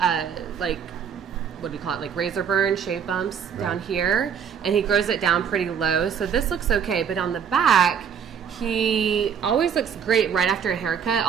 like, what do you call it, like razor burn, shave bumps down here, and he grows it down pretty low. So this looks okay, but on the back, he always looks great right after a haircut.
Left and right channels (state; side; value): quieter; left; 7.6 dB